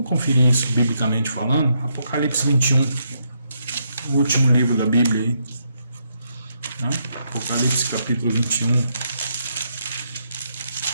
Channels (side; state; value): both; inverted; correlation -0.77